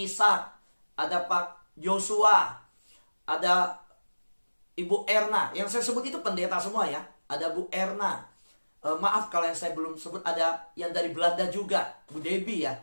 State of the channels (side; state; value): both; inverted; correlation -1.00